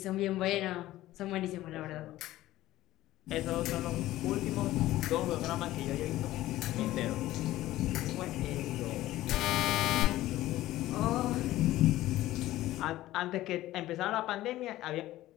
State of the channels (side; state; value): right; quieter; 15.6 dB